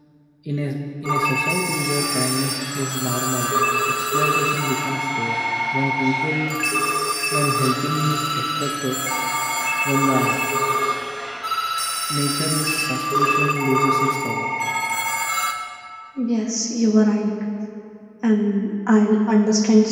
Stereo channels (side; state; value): both; identical; correlation 1.00